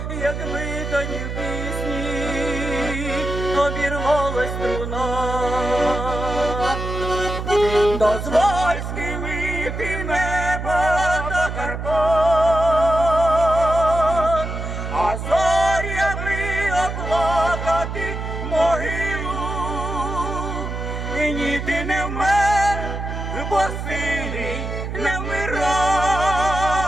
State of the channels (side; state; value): right; noise; hum, 5 dB below the sound